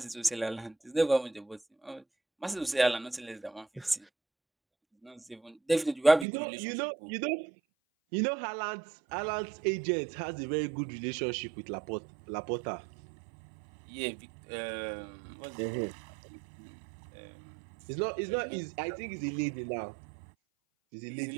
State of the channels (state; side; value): drops out; left; at 6.2 s